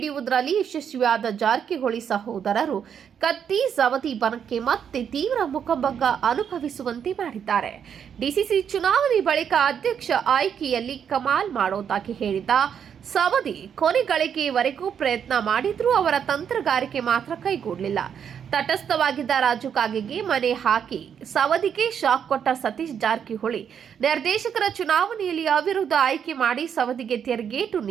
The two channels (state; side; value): quieter; left; 8.0 dB